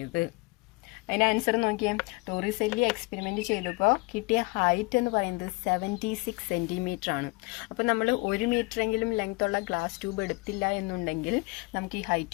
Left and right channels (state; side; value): quieter; right; 27.2 dB